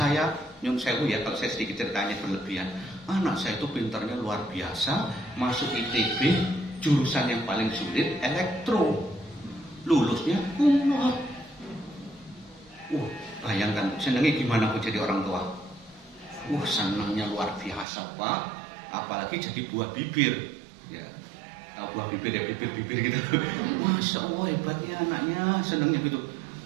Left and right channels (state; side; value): drops out; left; at 17.9 s